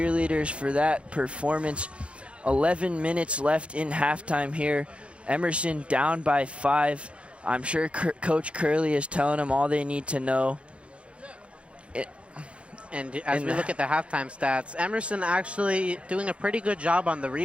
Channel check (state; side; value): late; left; 0.060 ms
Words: for that performance. 11 minutes left in halftime here. Emerson down by 5. I'm sure Coach Curley is telling them all they need to know. And as we look at the halftime stats, Emerson actually doing a pretty good job on the